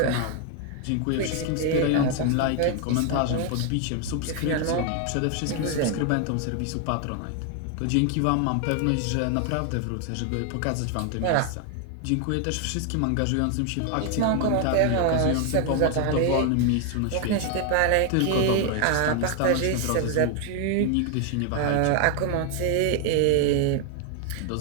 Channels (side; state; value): both; different; correlation 0.00